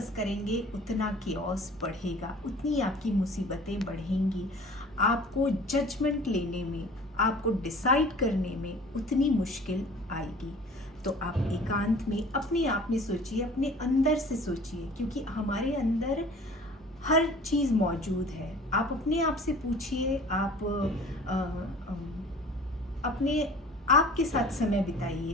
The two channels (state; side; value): normal; both; correlation 0.46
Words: करेंगे उतना कियोस बढ़ेगा, उतनी आपकी मुसीबतें बढ़ेंगी। आपको जजमेंट लेने में, आपको डिसाइड करने में उतनी मुश्किल आएगी। तो आप एकांत में अपने आप में सोचिए, अपने अंदर से सोचिए, क्योंकि हमारे अंदर हर चीज़ मौजूद है। आप अपने आप से पूछिए, आप अपने आप के साथ समय बिताइए,